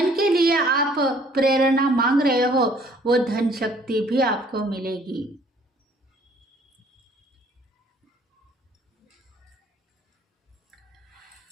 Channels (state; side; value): normal; both; correlation 0.59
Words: के लिए आप प्रेरणा मांग रहे हो वो धन शक्ति भी आपको मिलेगी।